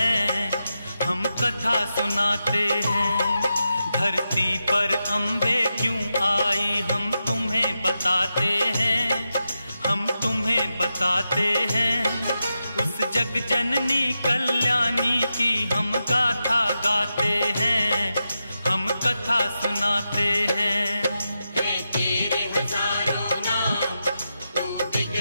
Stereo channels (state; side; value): inverted; both; correlation -0.89